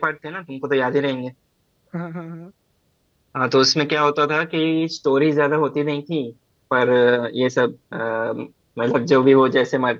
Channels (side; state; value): both; identical; correlation 1.00